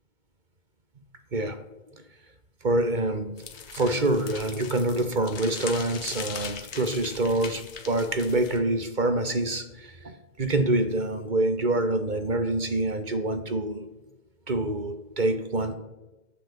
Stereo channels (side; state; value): left; late; 2.2 ms